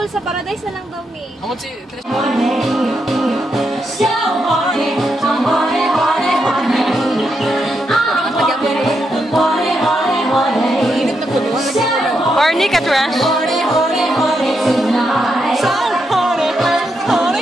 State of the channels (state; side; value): normal; both; correlation 0.82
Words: sa paradise na lang daw mi. Amo si Trish. Horny ka, Trash?